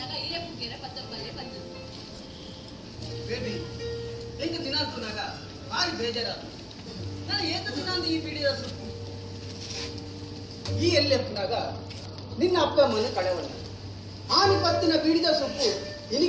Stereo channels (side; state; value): both; identical; correlation 1.00